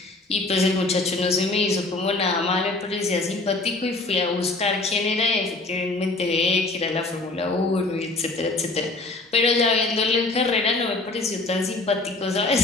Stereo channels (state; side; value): quieter; right; 3.2 dB